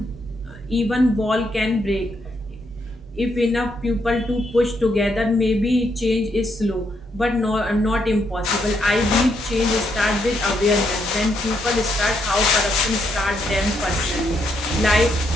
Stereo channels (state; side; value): normal; both; correlation 0.77